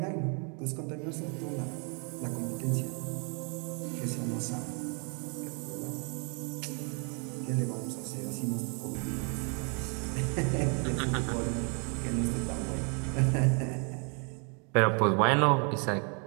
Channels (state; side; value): quieter; left; 37.3 dB